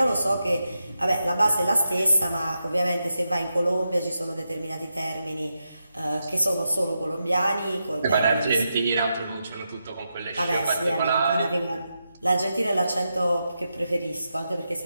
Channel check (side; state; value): both; inverted; correlation -0.87